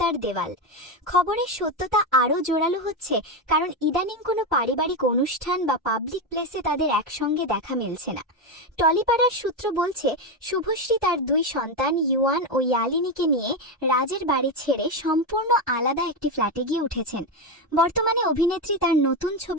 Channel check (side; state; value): both; normal; correlation 0.11